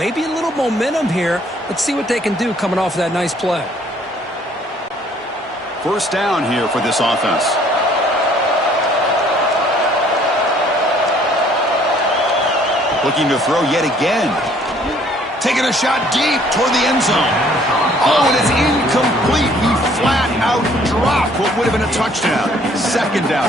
a little momentum here. Let's see what they can do coming off of that nice play. First down here for this offense. Looking to throw yet again. Taking a shot deep toward the end zone. Oh, and it's incomplete. He flat-out drop. What would have been a touchdown. Second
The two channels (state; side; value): normal; both; correlation 0.60